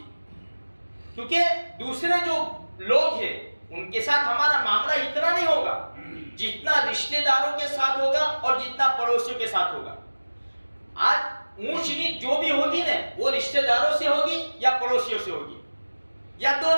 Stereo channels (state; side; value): inverted; both; correlation -1.00